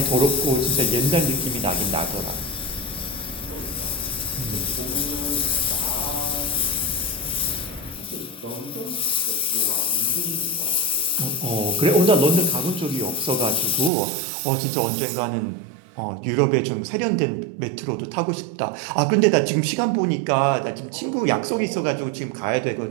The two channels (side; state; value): left; drops out; at 13.9 s